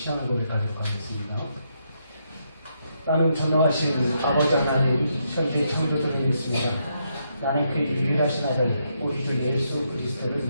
고백하도록 하겠습니다. 나는 전능하신 아버지 하나님 천지 창조주를 믿습니다. 나는 그의 유일하신 아들 우리 주 예수 그리스도를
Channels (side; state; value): both; inverted; correlation -0.78